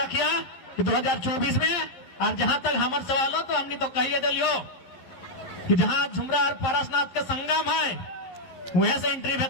कि 2024 में, और जहां तक हमारे सवाल हो तो हमने तो कहिए दिलियो कि जहां झुमरा और पारसनाथ के संगम है वहीं से एंट्री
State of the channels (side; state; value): right; late; 11 ms